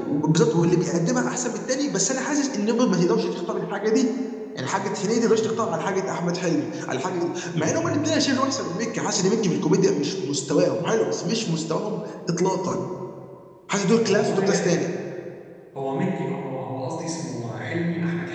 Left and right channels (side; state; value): both; identical; correlation 1.00